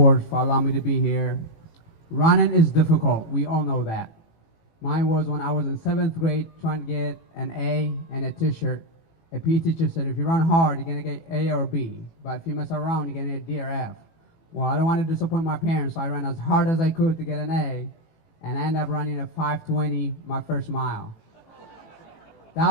for allowing me to be here. Running is difficult. We all know that. Mine was when I was in 7th grade trying to get an A and a t-shirt. A PE teacher said, if you run hard, you're going to get A or B. But if you mess around, you're going to get D or F. Well, I don't want to disappoint my parents, so I ran as hard as I could to get an A. and I ended up running a 5:20 my first mile.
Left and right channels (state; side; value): late; right; 18 ms